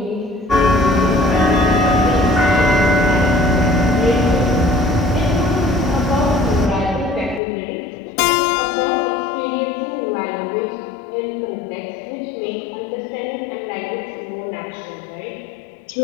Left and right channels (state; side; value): drops out; right; at 7.4 s